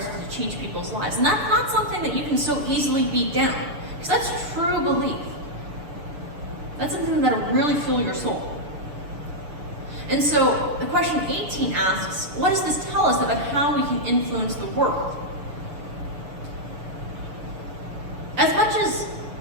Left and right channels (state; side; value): late; left; 6.9 ms